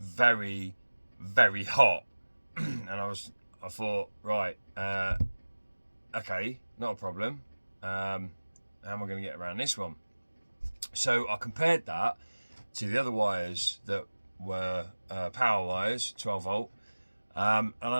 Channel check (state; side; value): inverted; both; correlation -1.00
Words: very hot. And I thought, right, okay, not a problem. How am I going to get around this one? So I compared that to the other wires that were power wires, 12 volt, and I